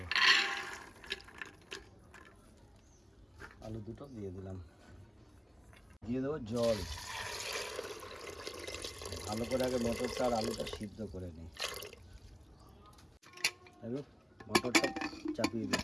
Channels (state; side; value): identical; both; correlation 1.00